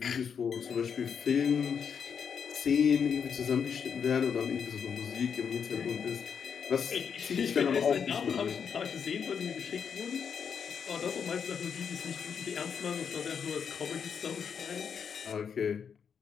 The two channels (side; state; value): right; quieter; 7.0 dB